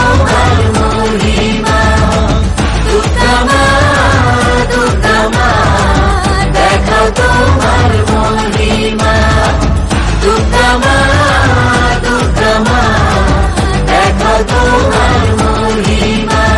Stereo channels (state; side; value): identical; both; correlation 1.00